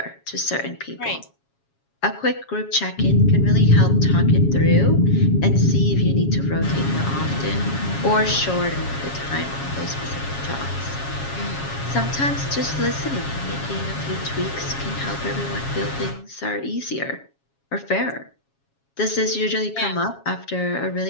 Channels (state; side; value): late; right; 7.3 ms